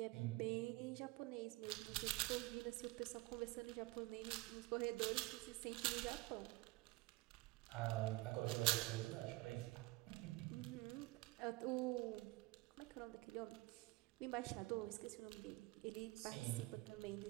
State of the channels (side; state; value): left; quieter; 20.7 dB